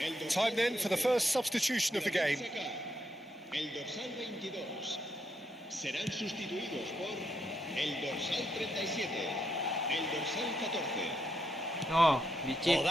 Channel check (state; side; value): normal; both; correlation 0.79